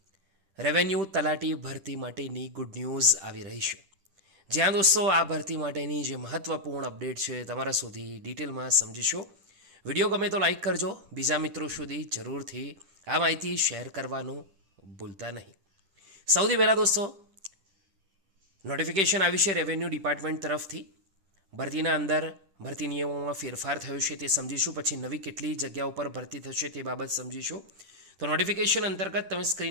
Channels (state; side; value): late; left; 10 ms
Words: રેવન્યુ તલાટી ભરતી માટેની ગુડ ન્યૂઝ આવી રહી છે, જ્યાં દોસ્તો આ ભરતી માટેની જે મહત્ત્વપૂર્ણ અપડેટ છે તમારા સુધી ડિટેલમાં સમજીશું. વિડીયો ગમે તો લાઈક કરજો, બીજા મિત્રો સુધી જરૂરથી આ માહિતી શેર કરવાનું ભૂલતા નહીં. સૌથી પહેલાં દોસ્તો નોટિફિકેશન આવી છે રેવન્યુ ડિપાર્ટમેન્ટ તરફથી. ભરતીના અંદર ભરતી નિયમોમાં ફેરફાર થયો છે તે સમજીશું, પછી નવી કેટલી જગ્યાઓ પર ભરતી થશે તે બાબત સમજીશું. તો નોટિફિકેશન અંતર્ગત તમે